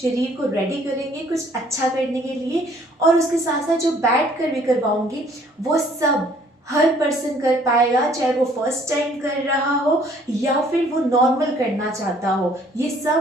को रेडी करेंगे कुछ अच्छा करने के लिए। और उसके साथ साथ जो बैठ कर भी करवाऊंगी वो सब हर पर्सन कर पाएगा, चाहे वो फर्स्ट टाइम कर रहा हो या फिर वो नॉर्मल करना चाहता हो। ये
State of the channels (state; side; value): normal; both; correlation 0.60